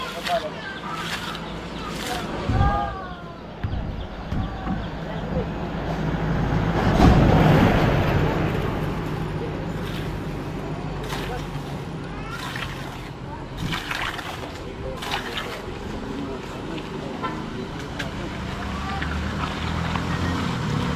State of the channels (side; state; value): both; identical; correlation 1.00